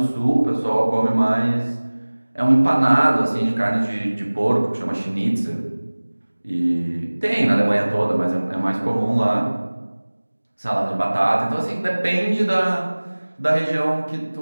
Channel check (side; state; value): both; inverted; correlation -1.00